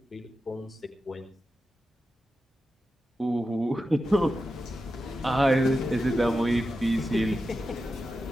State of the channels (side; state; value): both; normal; correlation 0.91